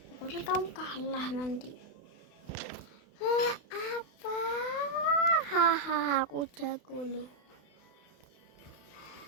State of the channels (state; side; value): late; right; 32 ms